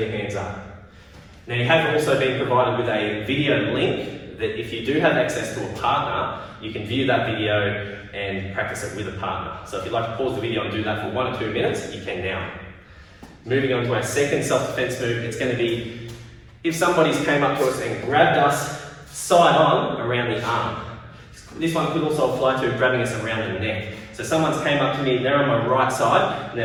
hands up. Now you have also been provided with a video link that if you do have access to a partner, you can view that video and practice it with a partner. So if you'd like to pause the video and do that for 1 or 2 minutes, you can now. Moving on to our second self-defense move, it's going to be if somebody's came up to us and grabbed us side on around the arm. This one could also apply to grabbing us around the neck. So someone's came up to me, they're on my right side, and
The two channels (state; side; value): identical; both; correlation 1.00